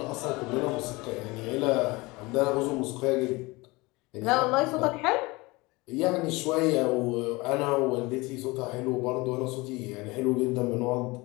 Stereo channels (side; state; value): right; quieter; 23.3 dB